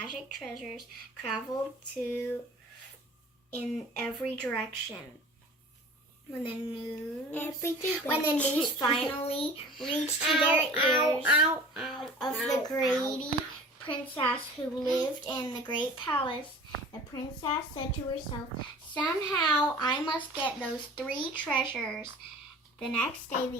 treasures traveled in every direction. When the news finally reached to their ears of the greedy princess who lived in the great palace, the princess said to herself, "Somehow I must get those 3 treasures." The next day,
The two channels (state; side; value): normal; both; correlation 0.43